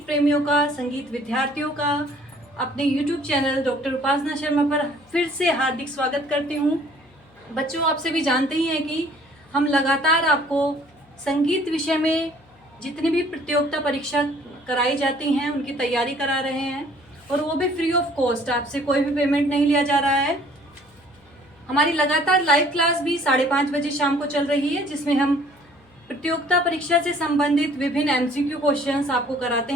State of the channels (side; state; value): left; noise; hum, 30 dB below the sound